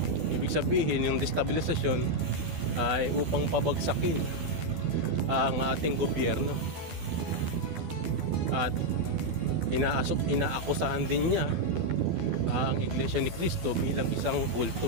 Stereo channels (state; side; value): late; left; 12 ms